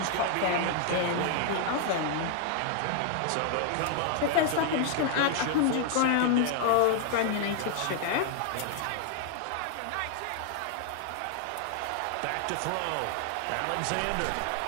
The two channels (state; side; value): different; both; correlation 0.00